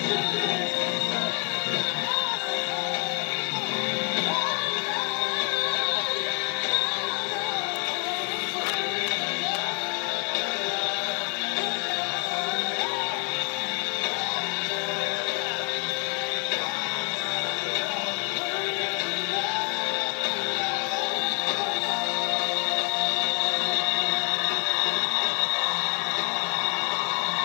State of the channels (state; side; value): quieter; right; 35.4 dB